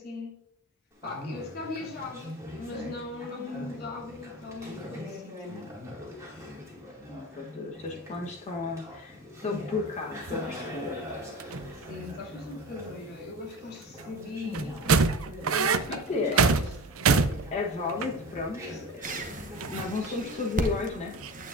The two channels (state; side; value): normal; both; correlation 0.32